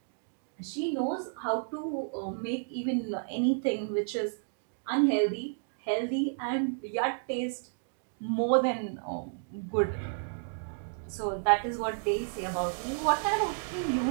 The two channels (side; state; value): left; silent; digital silence